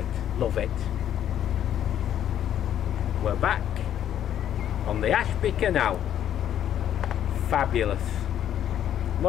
love it. We're back on the Ashby Canal. Fabulous.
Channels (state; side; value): quieter; right; 10.4 dB